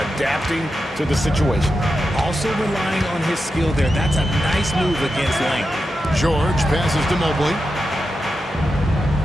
adapting to the situation. Also relying on his skill there. That's a nice move against length. George passes to Mobley.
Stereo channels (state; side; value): normal; both; correlation 0.89